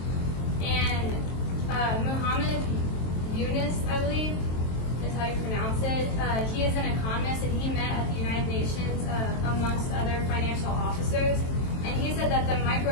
And Muhammad Yunus, I believe, is how you pronounce it. He is an economist, and he met at the United Nations amongst other financial officers. And he said that the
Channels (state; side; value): late; right; 23 ms